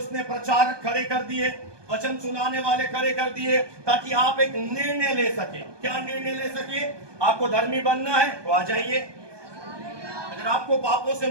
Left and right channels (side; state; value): left; late; 1.2 ms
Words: प्रचारक खड़े कर दिए, वचन सुनाने वाले खड़े कर दिए, ताकि आप एक निर्णय ले सके। क्या निर्णय ले सके? आपको धर्मी बनना है तो आ जाइए। अगर आपको पापों से